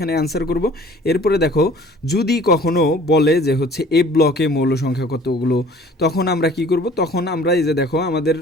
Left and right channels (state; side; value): normal; both; correlation 0.50